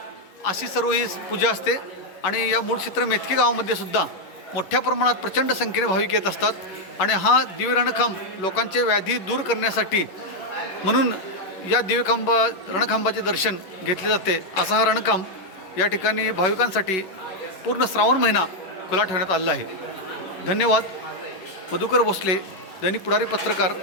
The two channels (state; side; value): late; right; 11 ms